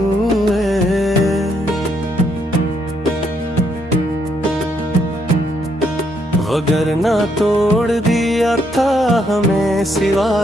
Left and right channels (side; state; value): both; normal; correlation 0.74